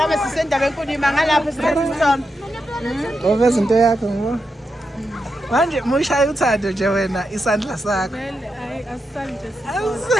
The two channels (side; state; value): both; normal; correlation 0.86